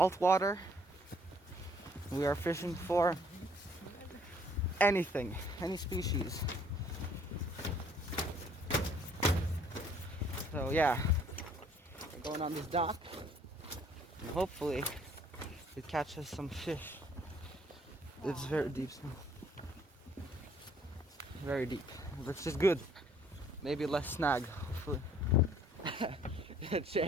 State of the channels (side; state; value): both; normal; correlation 0.61